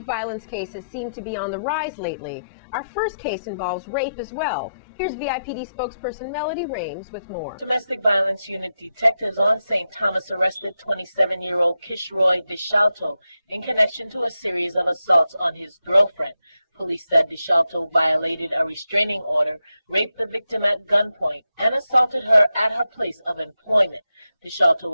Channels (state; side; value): inverted; both; correlation -0.88